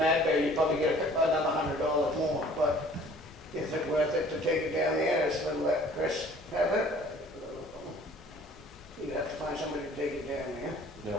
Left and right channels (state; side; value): normal; both; correlation 0.52